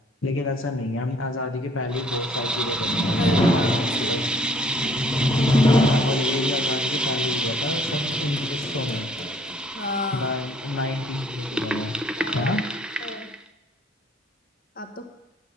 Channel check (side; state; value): both; normal; correlation 0.60